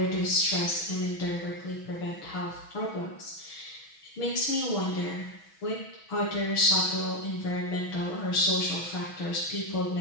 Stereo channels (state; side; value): late; right; 6.2 ms